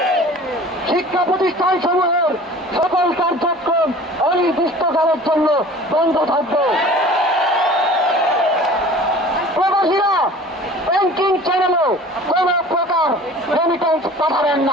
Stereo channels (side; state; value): both; normal; correlation 0.44